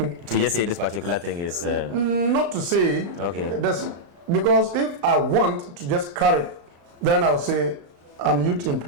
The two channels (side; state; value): left; late; 35 ms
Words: just say this particular thing is... Not to say. Okay. Because if I want to just carry, then I'll say I'm youth